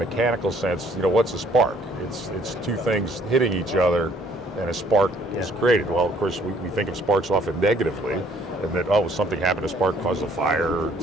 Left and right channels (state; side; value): normal; both; correlation 0.62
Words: sense, what's a spark? It's two things hitting each other, and a spark is created. Well, of course, we think of sparks often negatively, and that something happened, a spark caused a fire or